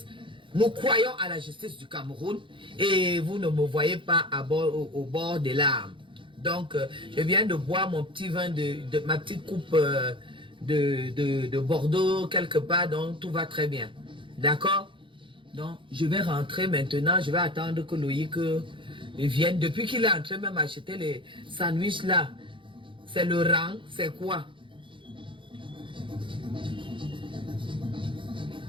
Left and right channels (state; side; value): late; left; 0.24 ms